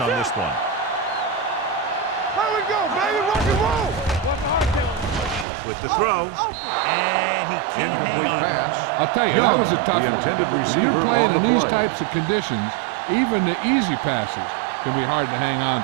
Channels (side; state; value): left; drops out; at 5.5 s